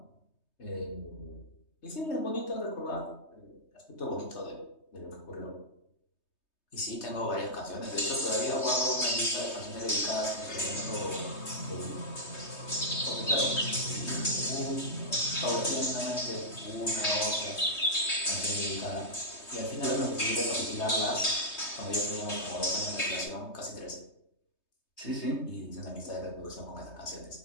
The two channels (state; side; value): late; right; 3.2 ms